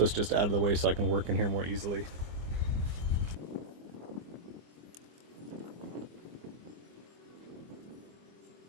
it's just out of the way so I can work in here more easily.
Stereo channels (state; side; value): late; left; 24 ms